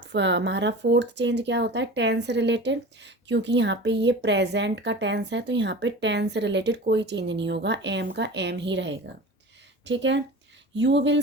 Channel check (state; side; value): normal; both; correlation 0.35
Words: हमारा फोर्थ चेंज क्या होता है, टेंस रिलेटेड, क्योंकि यहाँ पे ये प्रेजेंट का टेंस है तो यहाँ पे टेंस से रिलेटेड कोई चेंज नहीं होगा, एम का एम ही रहेगा। ठीक है। You will